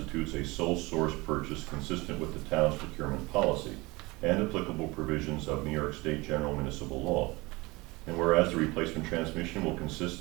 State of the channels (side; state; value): left; quieter; 23.2 dB